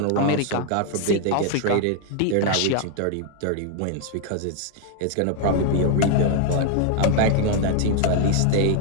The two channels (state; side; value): different; both; correlation 0.00